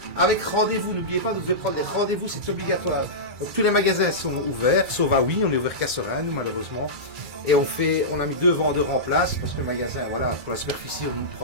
Avec rendez-vous, n'oubliez pas, vous devez prendre des rendez-vous, c'est obligatoire. Donc tous les magasins sont ouverts, sauf à oui, on est ouvert qu'à Serein, nous malheureusement. Et on a mis 2 vendeurs en place, parce que le magasin, voilà, pour la superficie, on ne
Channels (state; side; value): late; left; 2.3 ms